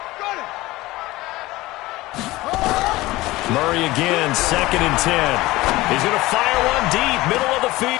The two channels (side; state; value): right; quieter; 19.0 dB